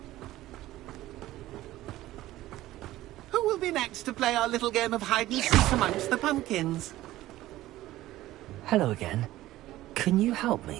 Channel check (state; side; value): quieter; left; 15.7 dB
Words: Who will be next to play our little game of hide and seek amongst the pumpkins? Hello again. Can you help